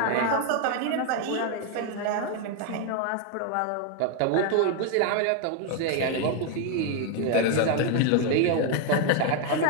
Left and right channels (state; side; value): different; both; correlation 0.01